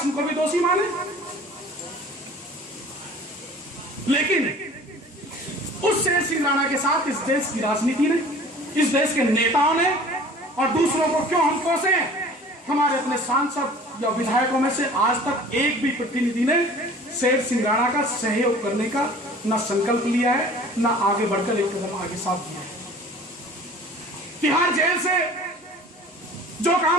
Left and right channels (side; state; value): both; normal; correlation 0.46